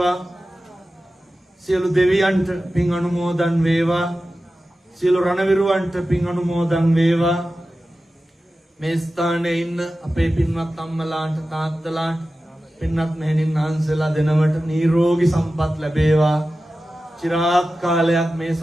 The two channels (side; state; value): both; normal; correlation 0.94